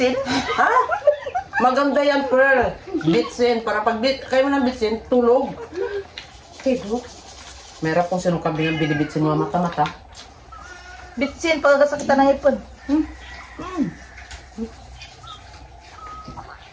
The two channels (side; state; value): both; identical; correlation 1.00